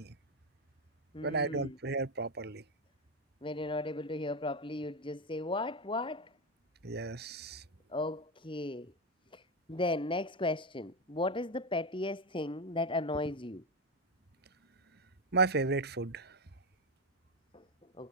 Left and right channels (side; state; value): both; normal; correlation 0.10